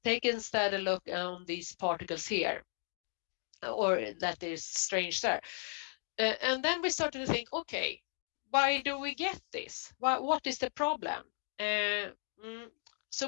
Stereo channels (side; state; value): right; silent; 54 dB below the other